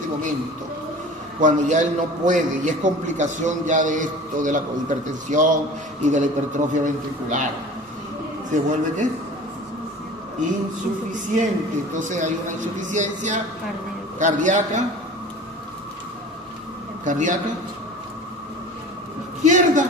momento? Cuando ya él no puede, y es complicación ya de esto, de la hipertensión y de la hipertrofia ventricular. ¿Se vuelve qué? Insuficiente. Entonces hay una insuficiencia cardíaca. Izquierda.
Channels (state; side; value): normal; both; correlation 0.40